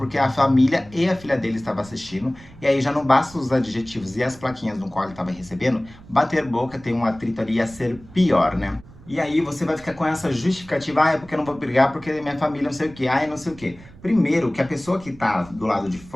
a família e a filha dele estavam assistindo, e aí já não basta os adjetivos e as plaquinhas no qual ele estava recebendo, bater boca tem um atrito ali a ser pior, né? E aí você vai ficar com essa justificativa, é porque eu não vou brigar, porque minha família não sei o que, não sei o que. Primeiro, que a pessoa que tá do lado de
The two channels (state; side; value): noise; right; rumble, 21 dB below the sound